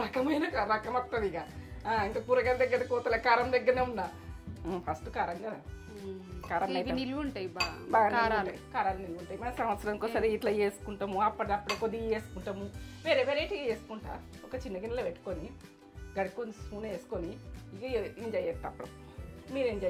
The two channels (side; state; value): both; identical; correlation 1.00